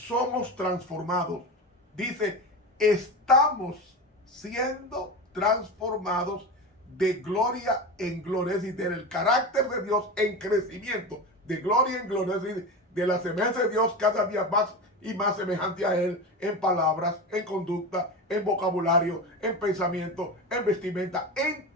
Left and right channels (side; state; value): both; normal; correlation 0.24